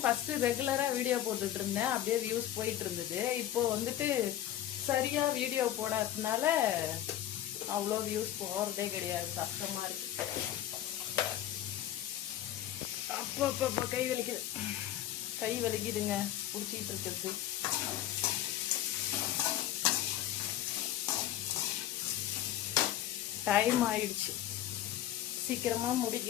ஃபஸ்ட்டு ரெகுலராக வீடியோ போட்டுட்டு இருந்தேன், அப்படியே வியூஸ் போயிட்டு இருந்தது. இப்போ வந்துட்டு சரியாக வீடியோ போடாததுனால அவ்வளோ வியூஸ் போகிறதே கிடையாது, கஷ்டமாக இருக்கு. அப்போ கை வலிக்குதுங்க பிடிச்சிக்கிட்டு இருக்கிறது. டைம் ஆயிடுச்சு, சீக்கிரமாக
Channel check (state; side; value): quieter; right; 12.3 dB